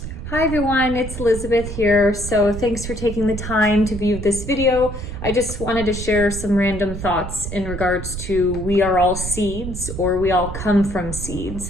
Hi everyone, it's Elizabeth here. So thanks for taking the time to view this video. I just wanted to share some random thoughts in regards to we are all seeds, or we all come from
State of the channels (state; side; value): noise; right; rumble, 7 dB below the sound